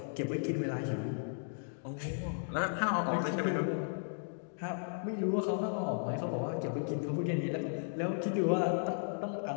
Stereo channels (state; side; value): silent; right; digital silence